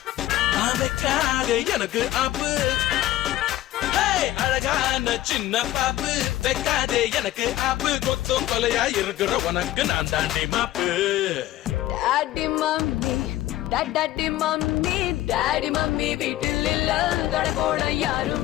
எனக்கு ஆப்பு, அழகான சின்ன பாப்பு வைக்காதே எனக்கு ஆப்பு, கொத்து கொலையா இருக்கிற உனக்கு நான் தாண்டி மாப்பு. Daddy mummy daddy mummy daddy mummy வீட்டில் இல்ல, தட போட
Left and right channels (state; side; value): quieter; right; 14.9 dB